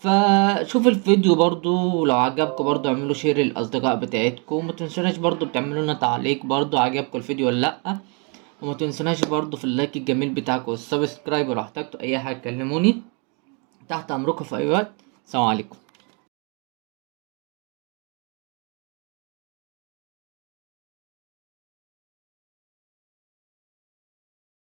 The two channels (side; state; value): left; quieter; 35.0 dB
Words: الفيديو برضو، ولو عجبكم برضو اعملوا شير للأصدقاء بتاعتكم، ومتنسوناش برضو بتعملوا لنا تعليق برضو عجبكم الفيديو ولا لأ. وما تنسوناش برضو في اللايك الجميل بتاعكم والسبسكرايب، ولو احتجتوا اي حاجه كلموني، تحت امركم في اي وقت. سلام عليكم.